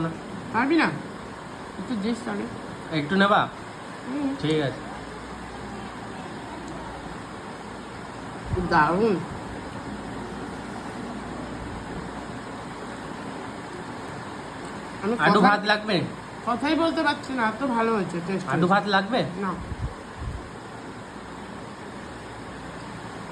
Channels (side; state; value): both; identical; correlation 1.00